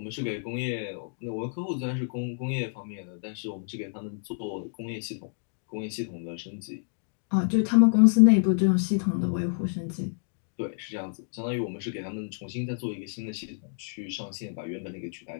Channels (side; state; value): right; silent; digital silence